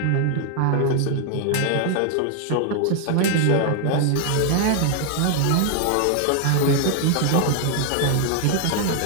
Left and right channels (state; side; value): different; both; correlation 0.00